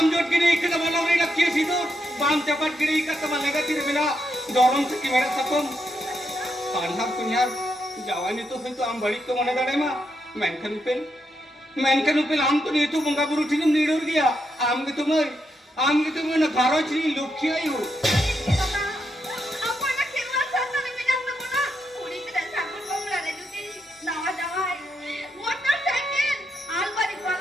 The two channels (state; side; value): normal; both; correlation 0.82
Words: जोट गिरी इकत वाला रे लक्ष्य सीधो बाम चपट गिरी इकत वाला लगा तीर बिना दौरम से की मेरा सकम पांडा कुन्यार जवानी तो फिर तो आम बड़ी को मने दाड़े मा मेनकन उपेल आम तो नहीं तो बंगा बुरु ठीक नीडोर गया आम के तुम ना घरो चली लुक्की आयु